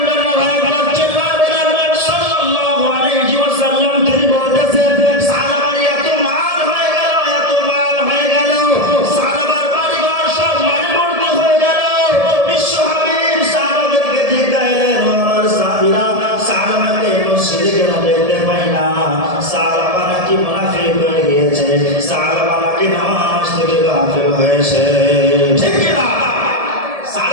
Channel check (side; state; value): left; late; 1.7 ms